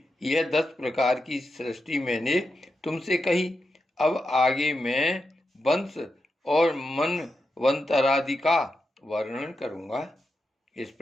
यह 10 प्रकार की सृष्टि मैंने तुमसे कही। अब आगे मैं वंश और मनवंतरादि का वर्णन करूंगा। इस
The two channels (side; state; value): both; normal; correlation 0.88